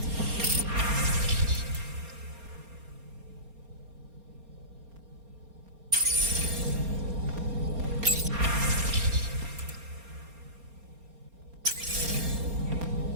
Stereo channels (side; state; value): left; late; 4.3 ms